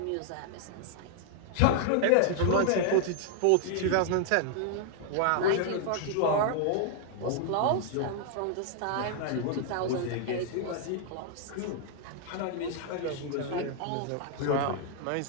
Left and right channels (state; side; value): different; both; correlation 0.00